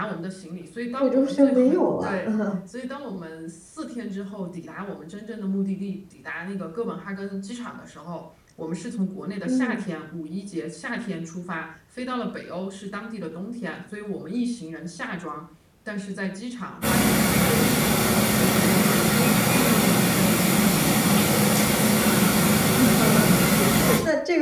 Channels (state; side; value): identical; both; correlation 1.00